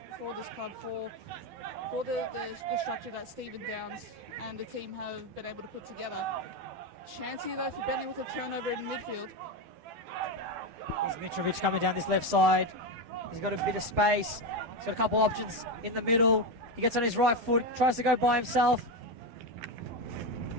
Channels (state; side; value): late; left; 12 ms